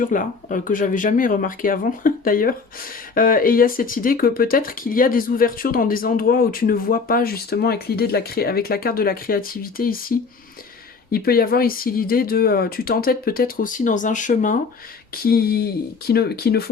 là, que j'avais jamais remarqué avant d'ailleurs. Et il y a cette idée que peut-être qu'il y a des ouvertures dans des endroits où tu ne vois pas justement avec l'idée de avec la carte de la créativité ici. Il peut y avoir ici l'idée de... tu t'entêtes peut-être aussi dans un chemin qui ne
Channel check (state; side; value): quieter; right; 4.8 dB